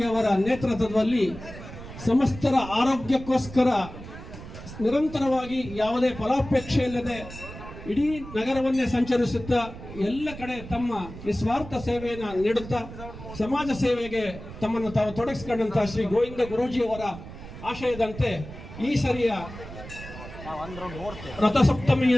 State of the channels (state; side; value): noise; right; rumble, 13 dB below the sound